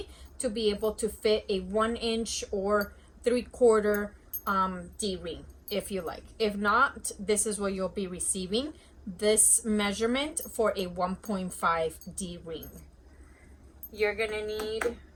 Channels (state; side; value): identical; both; correlation 1.00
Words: to be able to fit a 1 inch or 3/4 D ring if you like. If not, this is what you'll be receiving, this measurement for a 1.5 D ring. You're gonna need